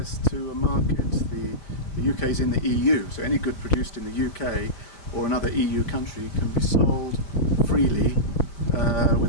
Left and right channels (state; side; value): late; right; 5.1 ms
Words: to a market. The UK is in the EU, so any good produced in the UK or another EU country can be sold freely